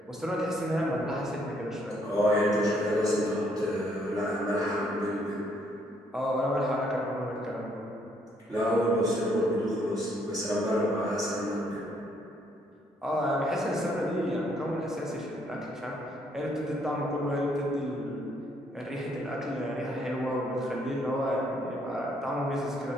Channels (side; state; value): both; normal; correlation 0.69